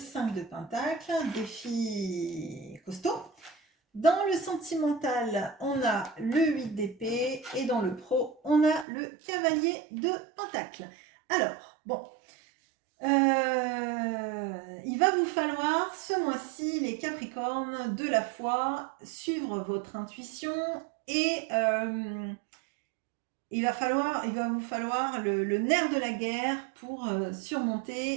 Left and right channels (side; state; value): left; drops out; at 8.8 s